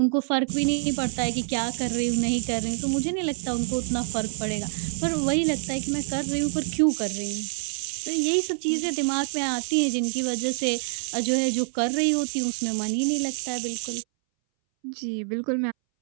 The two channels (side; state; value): left; silent; 61 dB below the other